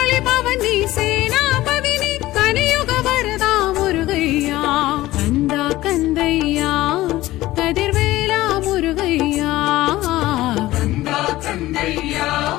பவனி சேனாபதி நீ கலியுக வரதா முருகையா கந்தா கந்தையா கதிர்வேலா முருகையா கந்தா கந்தையா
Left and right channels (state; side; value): quieter; right; 16.7 dB